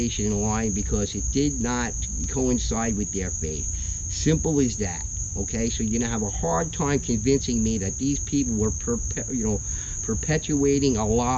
and lying because it did not coincide with their faith. Simple as that. Okay, so you're gonna have a hard time convincing me that these people were, perpetuating a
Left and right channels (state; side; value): identical; both; correlation 1.00